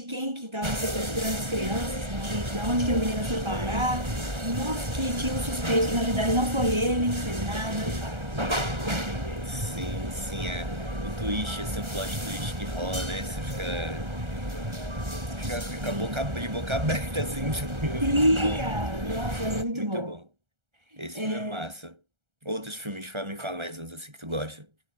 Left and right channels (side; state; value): left; late; 1.3 ms